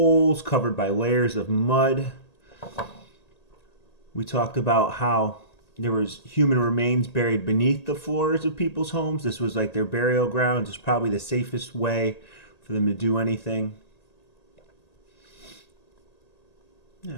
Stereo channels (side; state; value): right; late; 1.8 ms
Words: covered by layers of mud. We talked about how there was human remains buried beneath the floors of people's homes. This was like their burial grounds. It's probably the safest way for them to do anything.